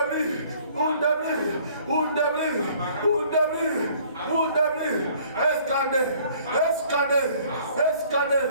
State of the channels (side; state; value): both; inverted; correlation -0.56